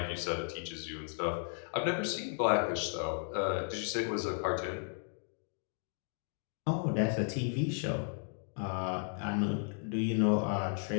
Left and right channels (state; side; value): silent; right; 55 dB below the other